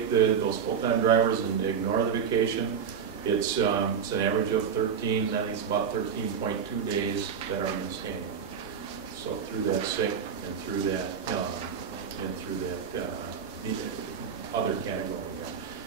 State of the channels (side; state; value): left; quieter; 7.3 dB